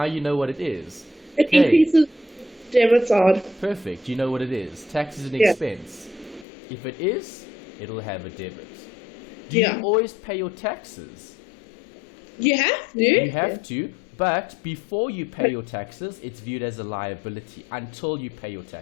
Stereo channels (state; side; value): drops out; right; at 6.5 s